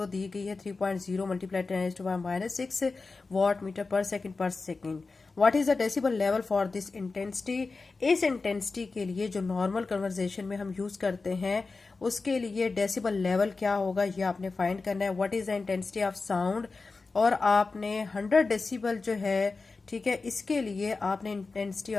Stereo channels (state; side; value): quieter; right; 4.0 dB